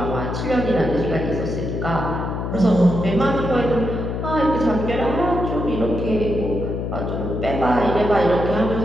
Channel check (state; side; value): noise; left; hum, 3 dB below the sound